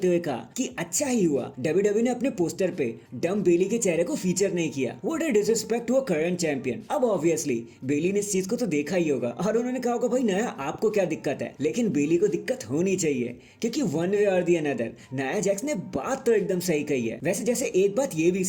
हुए कहा कि अच्छा ही हुआ डब्ल्यूडब्ल्यूई ने अपने पोस्टर पे डम बेली के चेहरे को फीचर नहीं किया। What a disrespect to a current champion. अब ऑब्वियसली बेली ने इस चीज को तो देखा ही होगा और उन्होंने कहा होगा भाई नया आपको क्या दिक्कत है, लेकिन बेली को दिक्कत होनी चाहिए, क्योंकि वन वे और दी अनदर नया जैक्स ने बात तो एकदम सही कही है। वैसे जैसे एक बात ये भी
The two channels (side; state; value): both; identical; correlation 1.00